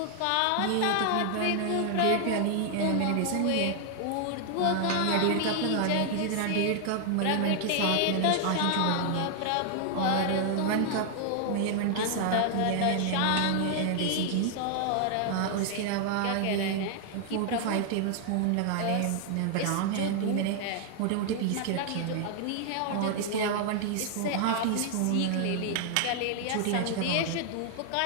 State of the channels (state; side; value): different; both; correlation 0.00